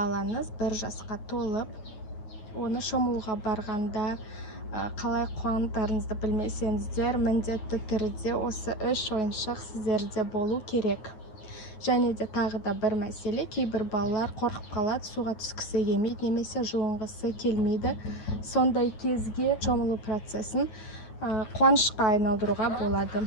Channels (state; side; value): late; right; 9.3 ms